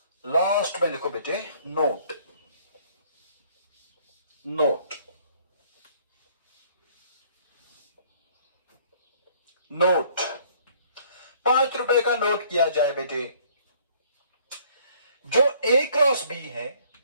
लास्ट में लिखो बेटे नोट, नोट, नोट। 5 रुपए का नोट किया जाए बेटे। जो ए क्रॉस बी है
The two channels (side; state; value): both; inverted; correlation -0.60